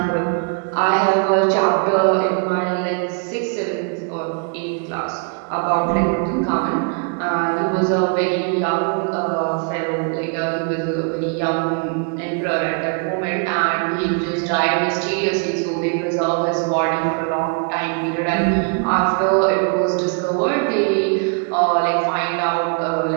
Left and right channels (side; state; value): left; quieter; 38.3 dB